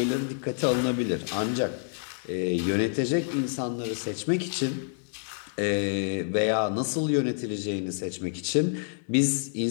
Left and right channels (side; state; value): right; silent; digital silence